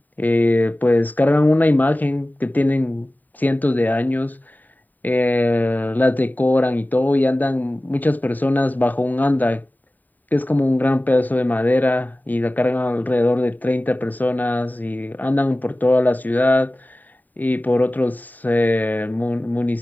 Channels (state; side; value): late; right; 0.086 ms